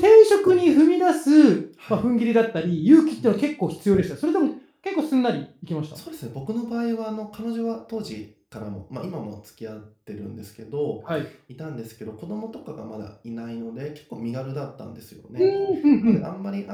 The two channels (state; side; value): identical; both; correlation 1.00